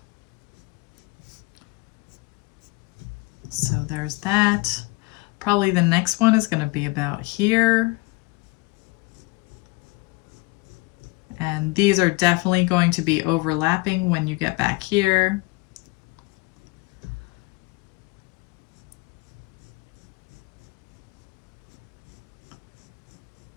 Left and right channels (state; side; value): quieter; right; 24.6 dB